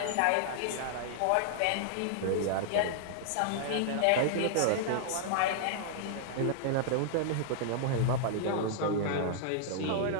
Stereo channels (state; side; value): different; both; correlation -0.01